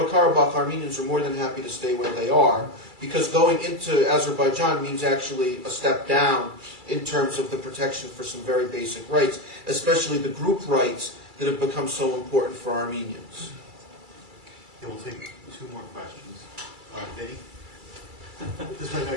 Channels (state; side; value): late; left; 2.3 ms